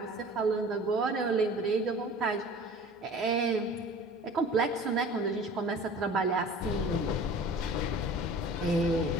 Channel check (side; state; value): both; normal; correlation 0.43